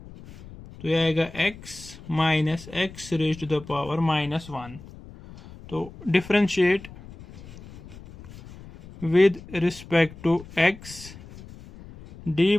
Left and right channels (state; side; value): noise; left; rumble, 18 dB below the sound